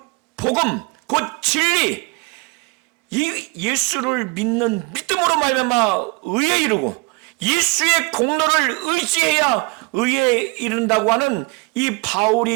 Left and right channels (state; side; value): quieter; left; 28.2 dB